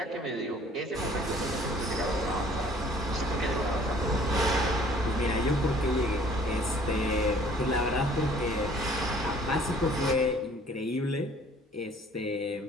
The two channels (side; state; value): both; normal; correlation 0.55